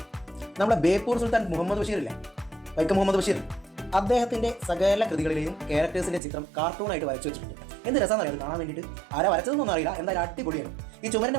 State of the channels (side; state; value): left; drops out; at 6.2 s